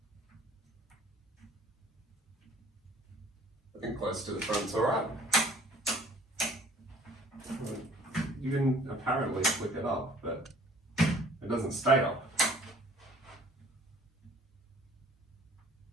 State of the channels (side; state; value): both; normal; correlation 0.53